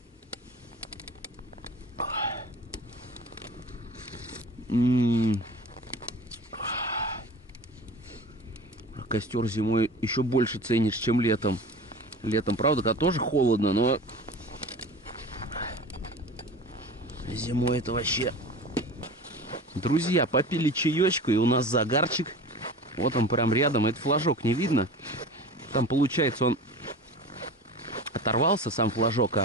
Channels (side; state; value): both; normal; correlation 0.36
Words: Костер зимой еще больше ценишь, чем летом. Летом, правда, когда тоже холодно, но зимой это вообще... Друзья, попили чаечку, и у нас загарчик. Вот он прям рядом. Это флажок не видно. Там, получается, он оторвался, сам флажок,